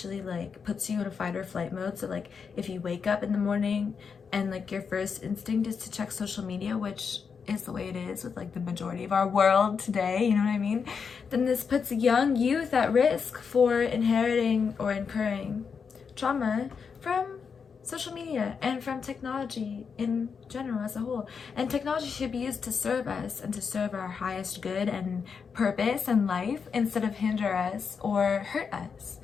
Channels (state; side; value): quieter; right; 6.0 dB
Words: like puts you in a fight or flight mode. So like if you wake up in the morning and like your first instinct is to check social media, which is the way it is with like the majority of our world today, you know what I mean, then this puts young youth at risk for inheriting or incurring trauma from social media and from technology in general as a whole. And technology should be used to serve us and to serve our highest good and purpose in life instead of hinder us or hurt us.